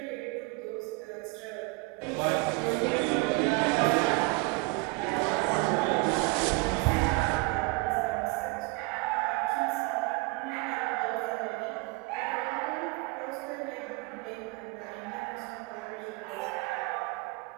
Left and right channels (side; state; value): left; quieter; 26.3 dB